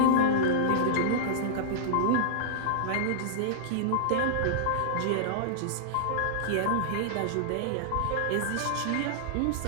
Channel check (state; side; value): different; both; correlation -0.02